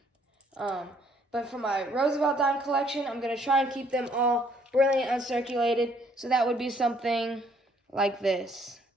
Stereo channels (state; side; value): normal; both; correlation 0.65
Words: But for my Roosevelt dime collection, I'm going to try and keep them all brilliant uncirculated, so that would be something like this.